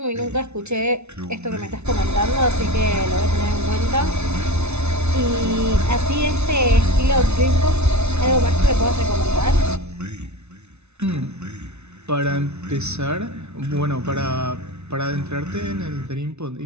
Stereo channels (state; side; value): late; left; 0.81 ms